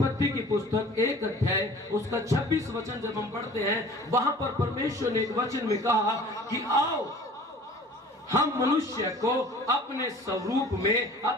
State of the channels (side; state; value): both; normal; correlation 0.46